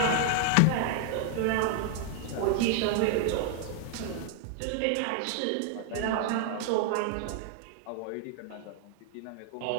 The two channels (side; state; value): both; different; correlation 0.00